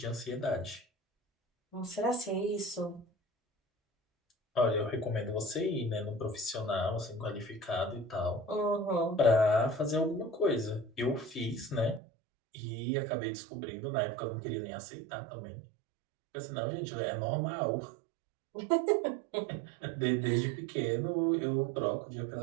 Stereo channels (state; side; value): drops out; left; at 12.0 s